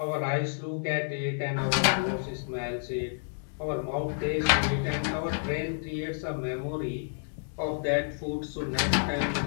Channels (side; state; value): right; silent; digital silence